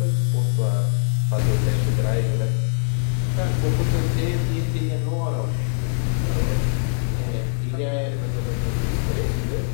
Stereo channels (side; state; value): right; silent; 64 dB below the other